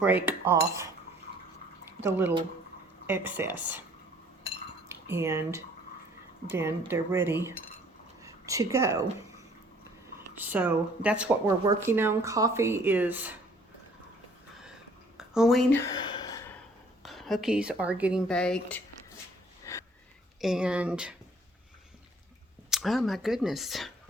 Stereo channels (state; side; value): normal; both; correlation 0.58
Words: off the little excess, and then they're ready to go. So that's what we're working on. Coffee is going, cookies are getting baked, and oh my goodness,